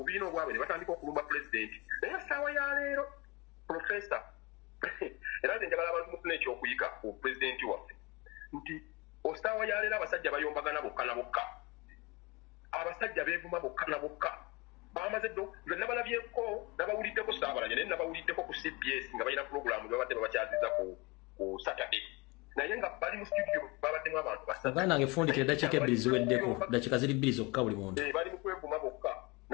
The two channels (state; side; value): quieter; right; 25.1 dB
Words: obwabwe ne batandika okulumba pulezidenti naye essaawa ya leero profesa era nze njagala abantu mufuna ekyokuyiga ku pulezidenti waffe nti essaawa ya leero abasajja bayombagana bokka na bokka abasajja beevuma bokka na bokka bamaze ddo nze nabalabyeko nabawuliddeko Saabalanya naye nabawuliddeko ku CBS nga balina pulogulaamu babadde babakyaziza ku Saturday naye nga bali mu studio babaddemu abantu basatu nange fundikira eddakiika ebbiri ziweddeko dakiika ziri bbiri zokka buli muntu bali mu kwevuma bokka